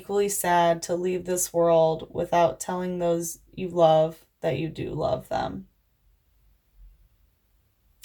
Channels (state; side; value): identical; both; correlation 1.00